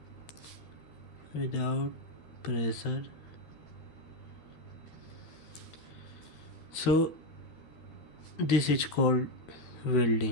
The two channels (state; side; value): late; right; 13 ms